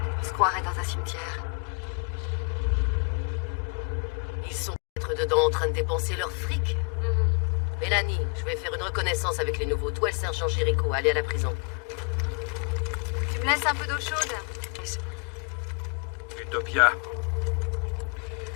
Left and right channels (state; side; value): quieter; right; 36.0 dB